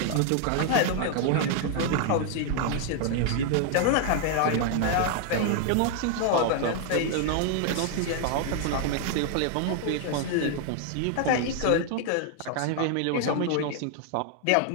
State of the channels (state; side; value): different; both; correlation 0.00